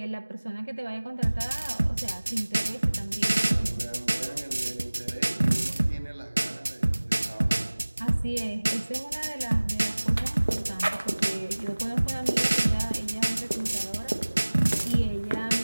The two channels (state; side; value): inverted; both; correlation -1.00